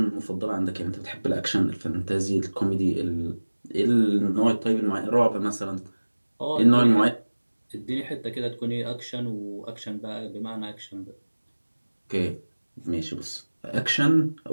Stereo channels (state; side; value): inverted; both; correlation -1.00